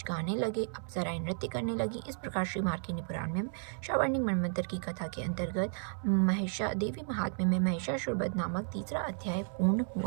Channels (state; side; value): silent; left; digital silence